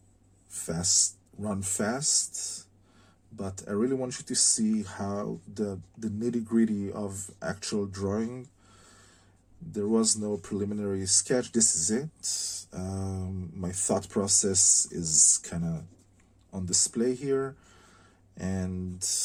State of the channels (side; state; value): both; identical; correlation 1.00